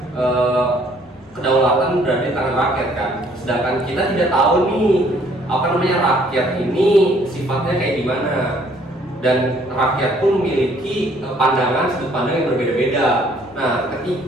kedaulatan berada di tangan rakyat kan. Sedangkan kita tidak tahu nih rakyat ini sifatnya kayak gimana, dan rakyat pun memiliki sudut pandang yang berbeda-beda. Nah,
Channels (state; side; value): normal; both; correlation 0.62